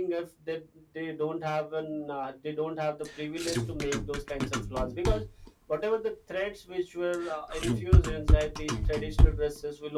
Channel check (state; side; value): identical; both; correlation 1.00